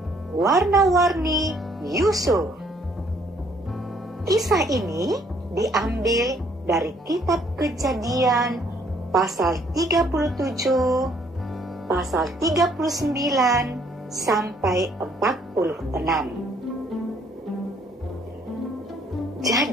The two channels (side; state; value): both; normal; correlation 0.64